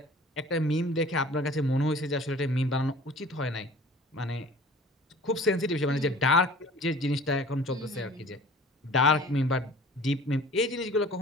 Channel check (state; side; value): normal; both; correlation 0.46